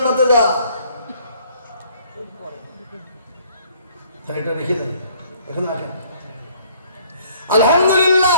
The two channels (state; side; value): inverted; both; correlation -0.59